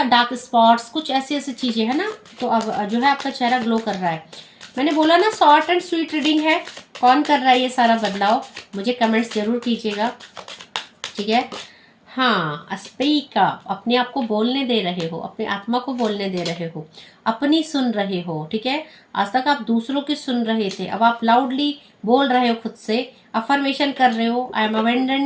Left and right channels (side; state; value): both; identical; correlation 1.00